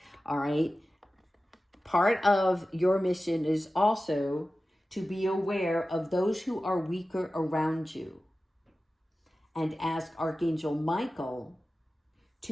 all right? Part of your mission is also to be aware of those who are weaker around you and ask Archangel Michael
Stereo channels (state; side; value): normal; both; correlation 0.95